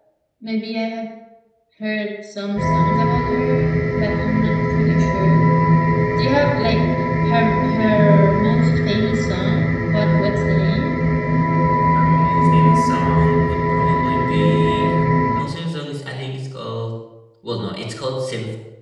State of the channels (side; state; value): both; identical; correlation 1.00